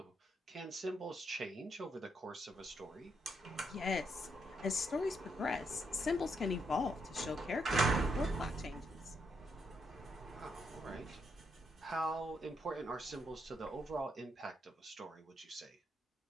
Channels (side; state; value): both; normal; correlation 0.78